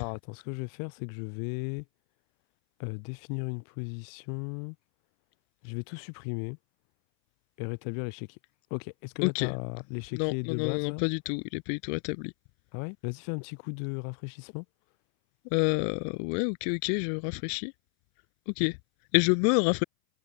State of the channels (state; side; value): silent; right; 57 dB below the other